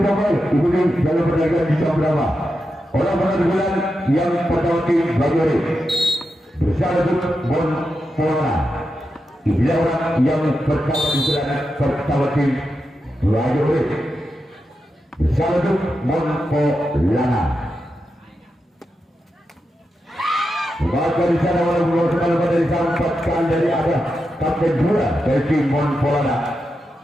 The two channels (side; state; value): both; normal; correlation 0.88